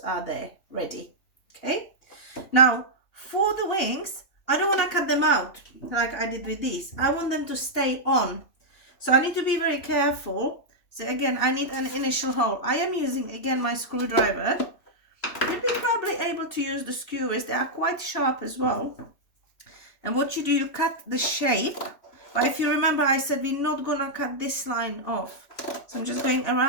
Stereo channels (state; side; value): late; right; 3.1 ms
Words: are there, ready. Okay, now for the wings, I don't want to cut them out like I did with these. I want them to stay on. So I need to be very careful. So again, I need an initial hole. I am using again my screwdriver. You'd be probably able to use the skewers. They are quite sharp as well. And what you do, you cut the shape. But if you remember, I said we're not gonna cut this line off. So I'm just going